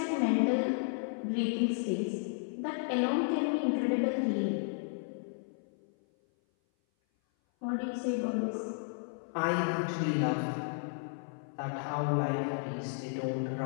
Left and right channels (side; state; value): right; silent; 56 dB below the other